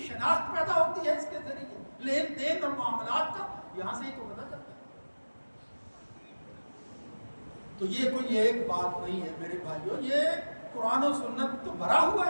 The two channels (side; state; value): both; inverted; correlation -1.00